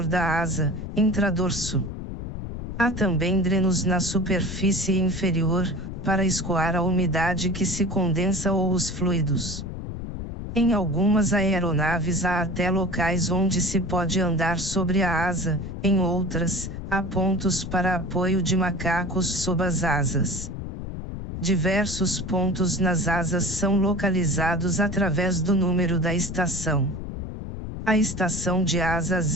da asa, intradorso. Há também drenos na superfície inferior, para escoar a umidade que se condensa ou os fluidos. Em algumas aeronaves há até locais onde se pode andar sobre a asa, em outras, há pontos para apoio de macacos sob as asas. Diversos pontos nas asas são localizados através do número da estação. A estação de asa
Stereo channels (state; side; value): noise; left; rumble, 7 dB below the sound